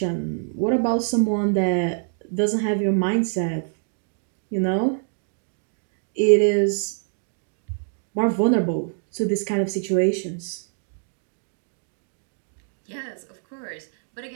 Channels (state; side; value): silent; left; 62 dB below the other